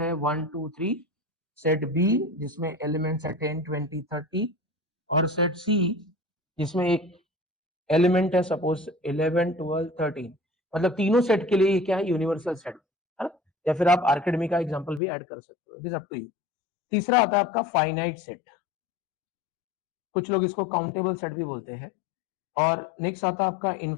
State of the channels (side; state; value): right; drops out; at 15.0 s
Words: है 1 2 3, सेट बी जिसमें एलिमेंट्स है 10 20 30, और सेट सी जिसमें एक एलिमेंट है सपोज 11 12 13। मतलब तीनों सेट के लिए ये क्या है? यूनिवर्सल सेट, है ना। या फिर आप आर्किमिडीज का एग्जांपल भी ऐड कर सकते हो, it is up to you. तीसरा आता है आपका फाइनाइट सेट, कुछ लोग इसको काउंटेबल सेट भी बोलते हैं। और नेक्स्ट आता है आपका